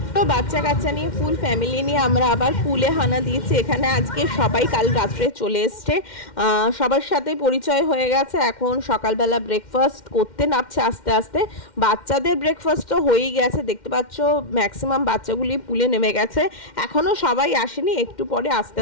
বাচ্চা কাচ্চা নিয়ে ফুল ফ্যামিলি নিয়ে আমরা আবার পুলে হানা দিয়েছি। এখানে আজকে সবাই কাল রাত্রে চলে এসছে, সবার সাথে পরিচয় হয়ে গেছে। এখন সকালবেলা ব্রেকফাস্ট করতে নামছে আস্তে আস্তে। বাচ্চাদের ব্রেকফাস্ট তো হয়েই গেছে, দেখতে পাচ্ছ ম্যাক্সিমাম বাচ্চাগুলি পুলে নেমে গেছে। এখনো সবাই আসেনি, একটু পরে আস্তে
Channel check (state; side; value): late; right; 2.1 ms